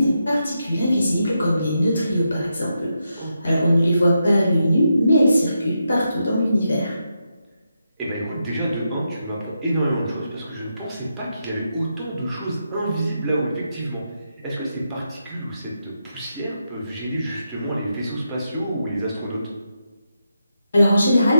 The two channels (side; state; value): both; inverted; correlation -0.84